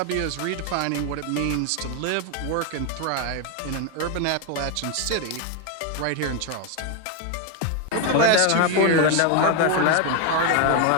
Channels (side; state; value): both; different; correlation 0.01